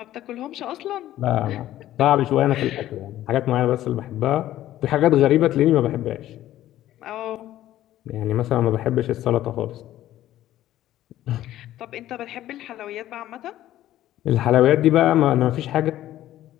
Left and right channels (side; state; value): right; quieter; 13.5 dB